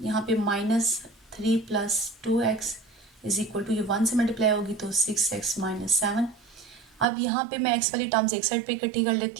पे -3 + 2x = ये 1 से मल्टीप्लाई होगी तो 6x - 7। अब यहाँ पे मैं x वाली टर्म्स एक साइड पे इकट्ठी कर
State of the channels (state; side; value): drops out; left; at 7.1 s